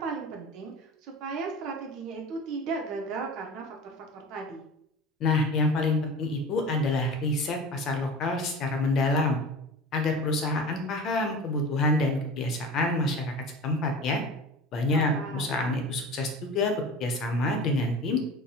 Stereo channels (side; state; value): both; normal; correlation 0.35